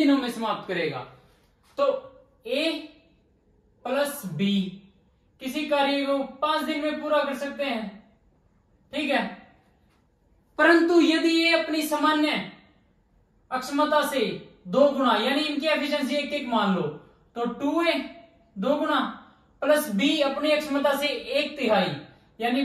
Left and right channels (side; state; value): both; identical; correlation 1.00